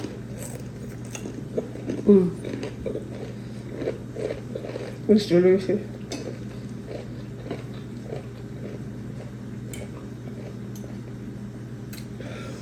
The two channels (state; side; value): identical; both; correlation 1.00